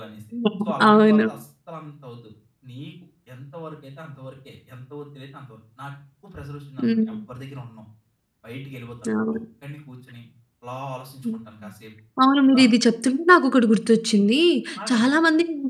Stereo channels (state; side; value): identical; both; correlation 1.00